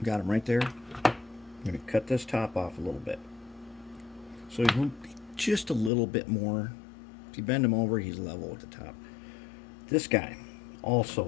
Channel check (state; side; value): drops out; right; at 5.9 s